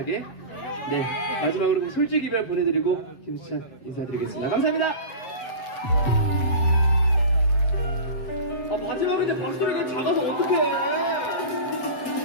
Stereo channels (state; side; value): late; right; 7.6 ms